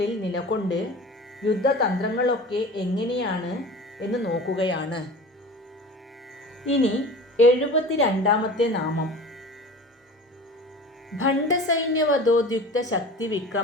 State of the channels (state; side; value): normal; both; correlation 0.37